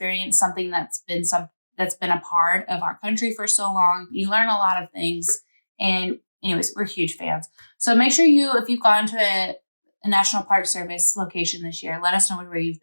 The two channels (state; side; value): inverted; both; correlation -1.00